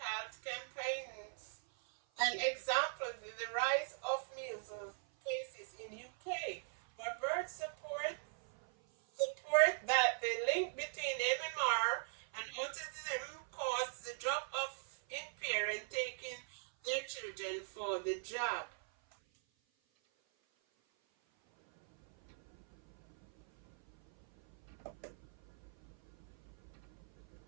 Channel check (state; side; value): silent; left; 51 dB below the other